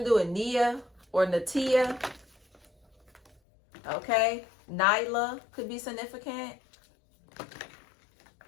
to do with Nia or Natia. Okay? Nyla could be significant.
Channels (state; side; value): drops out; right; at 3.3 s